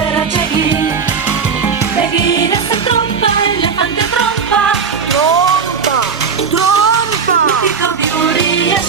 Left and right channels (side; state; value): left; quieter; 5.9 dB